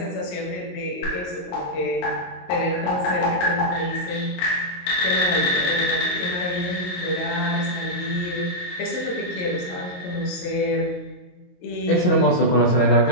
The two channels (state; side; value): late; right; 22 ms